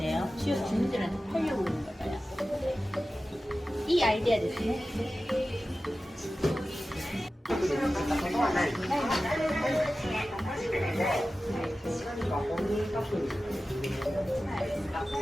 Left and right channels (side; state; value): both; normal; correlation 0.95